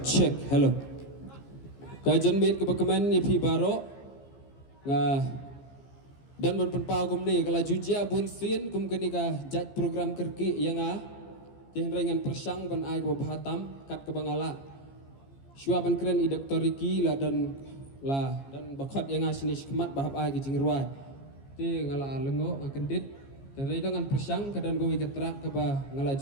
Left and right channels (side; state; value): right; late; 15 ms